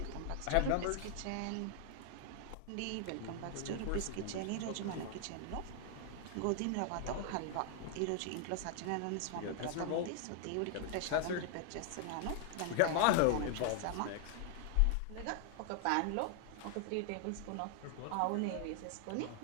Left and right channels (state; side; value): different; both; correlation 0.00